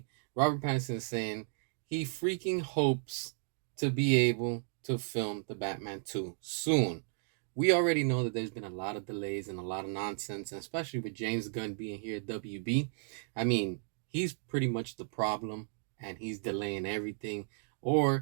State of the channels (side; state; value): left; silent; digital silence